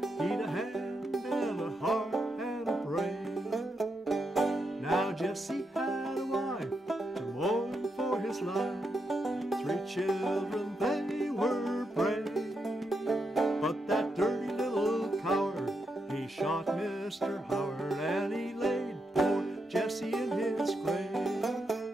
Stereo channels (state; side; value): normal; both; correlation 0.83